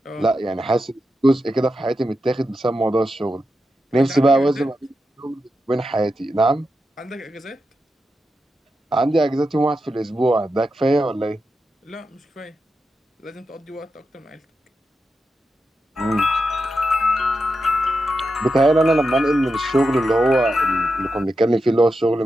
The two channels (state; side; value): normal; both; correlation 0.88